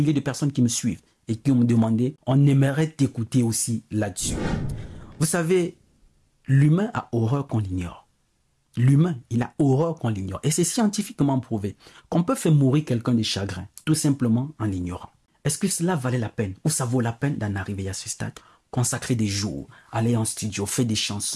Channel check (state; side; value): identical; both; correlation 1.00